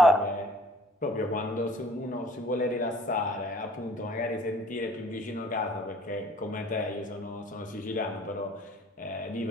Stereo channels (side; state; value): both; normal; correlation 0.54